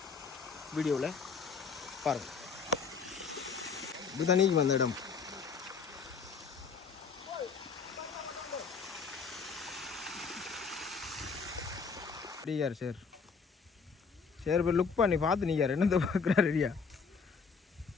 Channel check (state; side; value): quieter; right; 5.4 dB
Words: வீடியோவில் பாருங்கள். இது தண்ணிக்கு வந்த இடம். அப்படியார் சார் சரி இப்போ லுக் பண்ணி பார்த்து நீங்க என்னத்தை பார்க்குறா ரெடியா